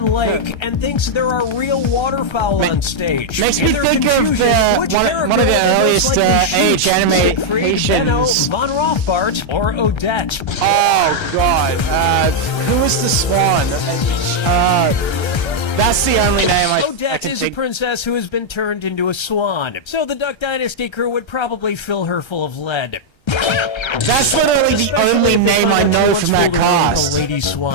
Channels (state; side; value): late; right; 1.3 ms